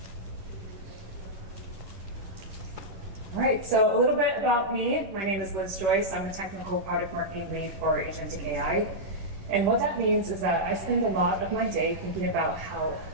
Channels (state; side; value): late; left; 11 ms